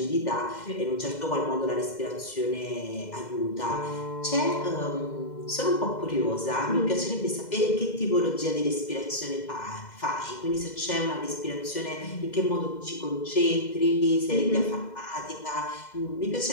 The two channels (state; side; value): late; right; 2.0 ms